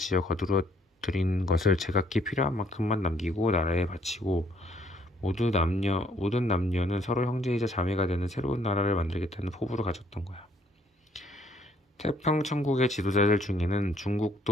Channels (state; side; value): normal; both; correlation 0.65